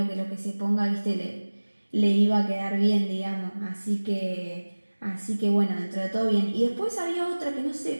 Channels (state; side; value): inverted; both; correlation -1.00